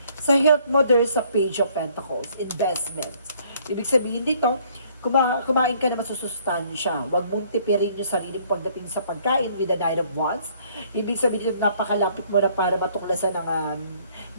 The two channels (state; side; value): inverted; both; correlation -0.62